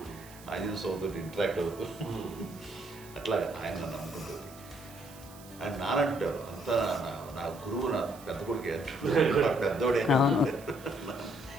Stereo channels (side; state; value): right; noise; hiss, 20 dB below the sound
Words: ఆంజనేయ స్వామితో ఇంటరాక్ట్ అవుతూ అట్లా ఆయన నన్ను నమ్ముకుంటుంది. ఆయన నానంటారు అంతా నా గురువు, నా పెద్ద కొడుకు పెద్దోడే.